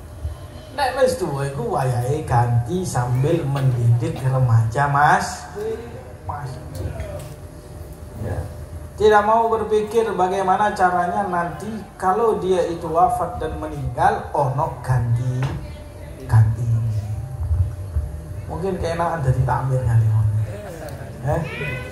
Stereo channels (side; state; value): both; identical; correlation 1.00